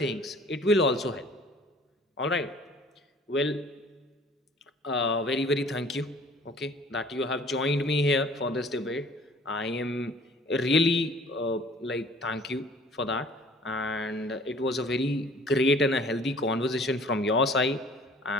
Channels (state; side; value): normal; both; correlation 0.52